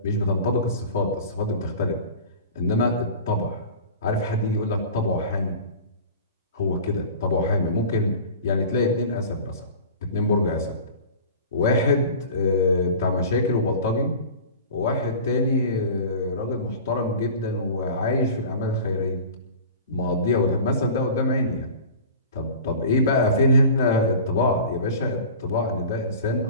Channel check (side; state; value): both; inverted; correlation -0.38